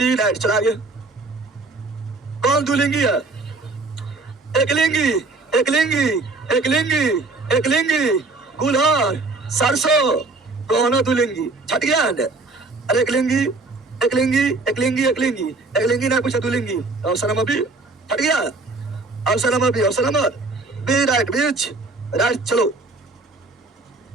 right. चला गया। कौन द्विलिंगी है? एक लिंगी, एक लिंगी, एक लिंगी, एक लिंगी। गुलहर, सरसों दोनों द्विलिंगी। छट गया है? अरे एक लिंगी, एक लिंगी, एक लिंगी, एक लिंगी, एक लिंगी ना कुछ द्विलिंगी। ऑप्शन नंबर बी छट गया। Option number B, option number B right, बीच राइट। चलो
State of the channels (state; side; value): quieter; left; 3.4 dB